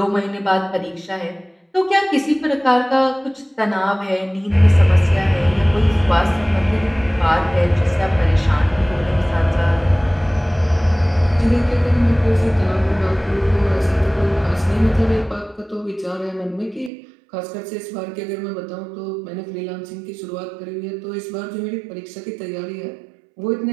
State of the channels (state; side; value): drops out; left; at 16.9 s